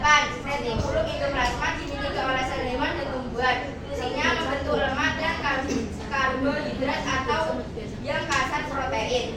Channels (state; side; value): identical; both; correlation 1.00